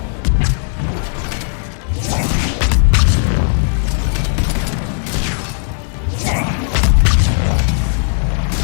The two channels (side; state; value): right; silent; digital silence